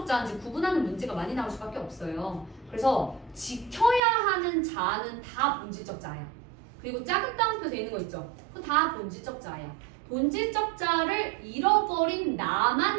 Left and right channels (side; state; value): left; drops out; at 4.0 s